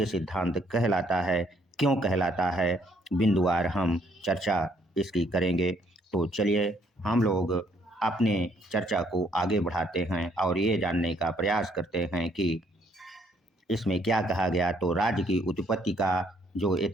सिद्धांत कहलाता है, क्यों कहलाता है, बिंदुवार हम चर्चा इसकी करेंगे। तो चलिए हम लोग अपने चर्चा को आगे बढ़ाते हैं और ये जानने का प्रयास करते हैं कि इसमें क्या कहा गया। तो राज्य की उत्पत्ति का जो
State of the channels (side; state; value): both; normal; correlation 0.67